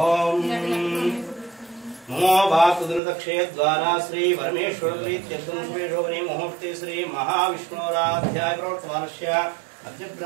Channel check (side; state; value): left; drops out; at 3.0 s